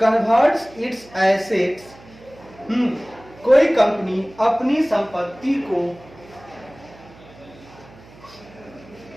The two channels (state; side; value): noise; right; hum, 22 dB below the sound